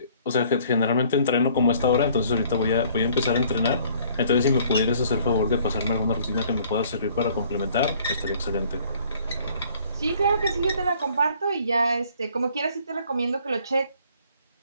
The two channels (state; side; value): inverted; both; correlation -0.58